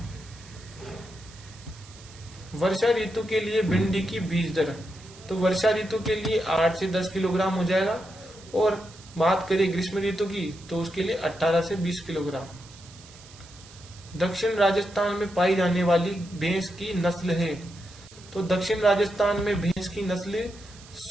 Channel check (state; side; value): noise; right; hiss, 21 dB below the sound